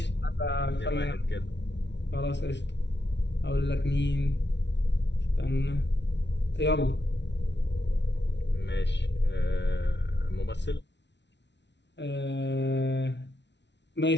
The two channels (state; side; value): late; right; 0.51 ms